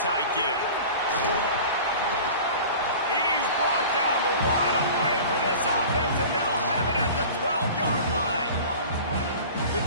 give. He's brought down, but what a play for this offense, and they'll have it at the 12-yard line. The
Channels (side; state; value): both; inverted; correlation -0.39